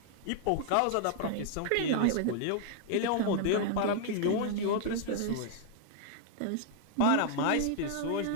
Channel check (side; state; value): both; different; correlation 0.00